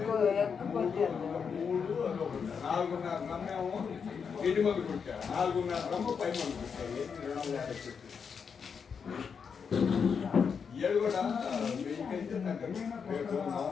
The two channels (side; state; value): right; quieter; 6.3 dB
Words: నాలుగున్నర నమ్మేమో ఇంటి మంది కుట్టారు 4.5 రమ్మ పై మంది కుట్టాయి 250 ఏడు కూడా వెయ్యికైతే రేపు